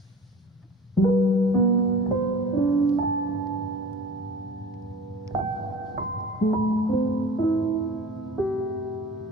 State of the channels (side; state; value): both; normal; correlation 0.41